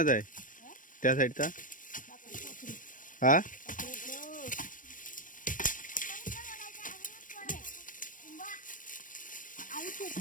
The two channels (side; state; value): right; late; 0.38 ms